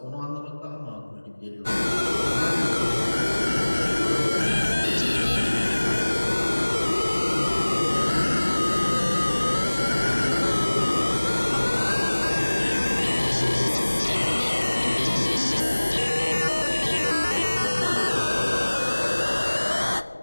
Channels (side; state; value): both; inverted; correlation -1.00